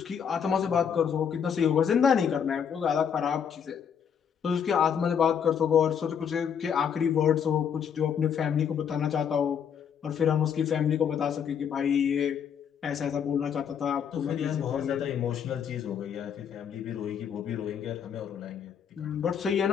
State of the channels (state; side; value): quieter; right; 7.7 dB